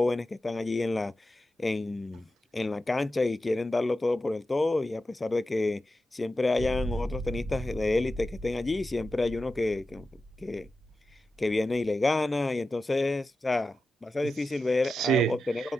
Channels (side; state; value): both; normal; correlation 0.91